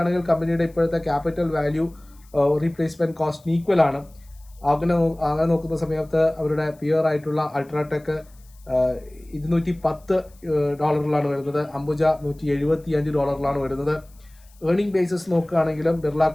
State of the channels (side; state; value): left; noise; hiss, 30 dB below the sound